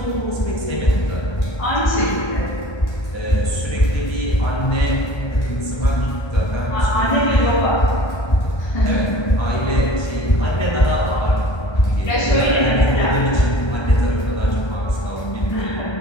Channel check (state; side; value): late; right; 1.3 ms